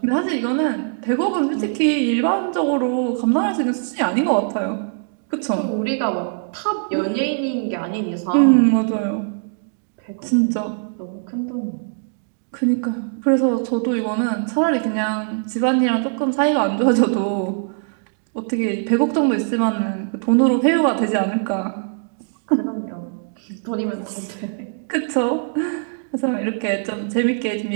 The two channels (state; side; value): silent; left; digital silence